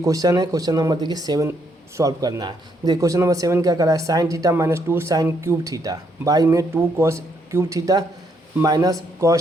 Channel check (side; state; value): both; normal; correlation 0.73